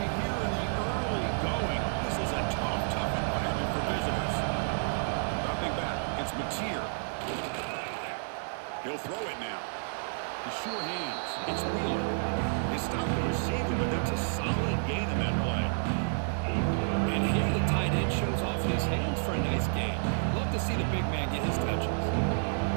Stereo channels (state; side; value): silent; left; 58 dB below the other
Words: here in the early going. This is a tough environment for visitors. Dropping back, it's Mateer. He'll throw it now. The sure hands, it's Wheeler. They stop the receiver, but that's a solid gain on that play. And here the tight end shows off his hands for a nice gain. Love to see the big man get his touches.